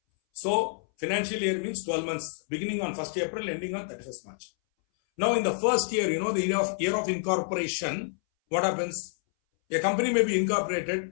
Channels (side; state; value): right; silent; 59 dB below the other